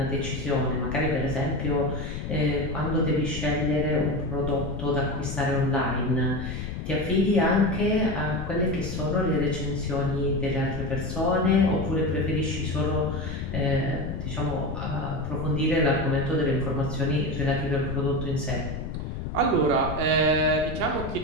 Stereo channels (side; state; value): left; noise; rumble, 6 dB below the sound